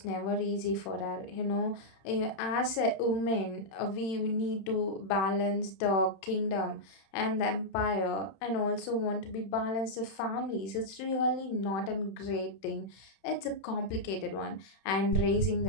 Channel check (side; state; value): right; late; 31 ms